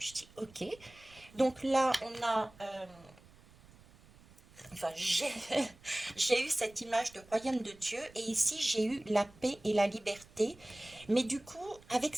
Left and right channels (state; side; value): noise; right; rumble, 24 dB below the sound